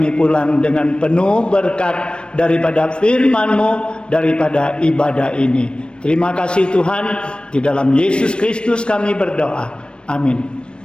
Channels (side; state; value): right; late; 0.056 ms